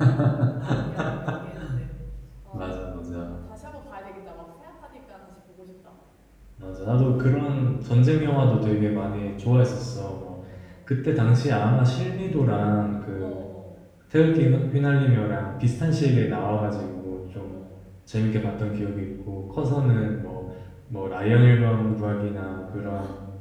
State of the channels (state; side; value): identical; both; correlation 1.00